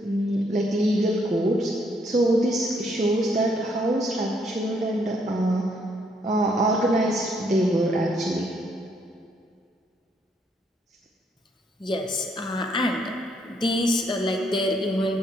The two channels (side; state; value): both; normal; correlation 0.71